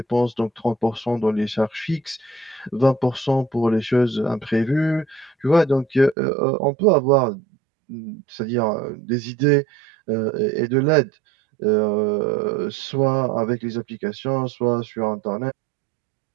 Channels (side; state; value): left; drops out; at 6.2 s